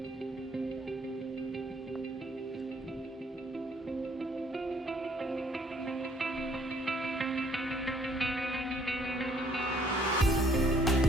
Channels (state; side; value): normal; both; correlation 0.63